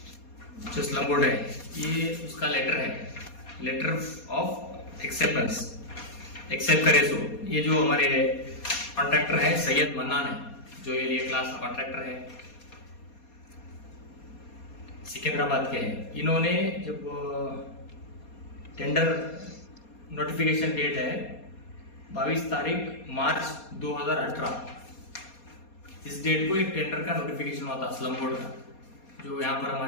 जो स्लम बोर्ड है, ये उसका लेटर है, लेटर ऑफ एक्सेप्टेंस, एक्सेप्ट करे सो। ये जो हमारे कॉन्ट्रैक्टर है सैयद मन्नान है, जो ये लिए क्लास कॉन्ट्रैक्टर है, सिकंदराबाद के हैं। इन्होंने जब टेंडर नोटिफिकेशन डेट है 22 तारीख मार्च 2018, इस डेट को एक टेंडर का नोटिफिकेशन हुआ था स्लम बोर्ड का, जो यहाँ पर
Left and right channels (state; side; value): late; right; 4.2 ms